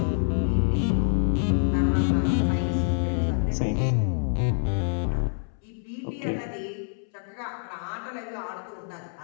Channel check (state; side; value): silent; right; 61 dB below the other